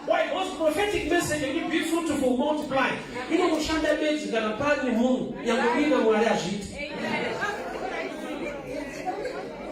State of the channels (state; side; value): identical; both; correlation 1.00